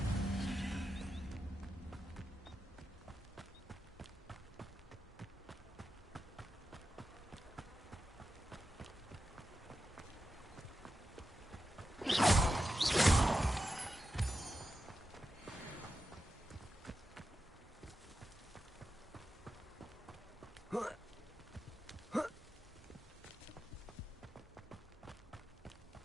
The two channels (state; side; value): normal; both; correlation 0.90